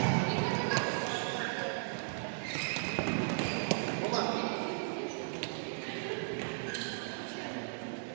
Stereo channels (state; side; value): silent; left; 54 dB below the other